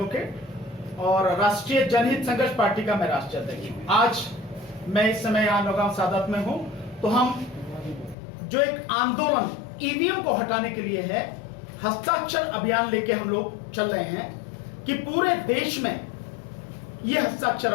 और राष्ट्रीय जनहित संघर्ष पार्टी का मैं राष्ट्रीय अध्यक्ष हूं। आज मैं इस समय यहाँ नौगांव सादत में हूं। तो हम जो एक आंदोलन ईवीएम को हटाने के लिए है, हस्ताक्षर अभियान लेके हम लोग चल रहे हैं कि पूरे देश में ये हस्ताक्षर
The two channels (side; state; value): right; drops out; at 8.2 s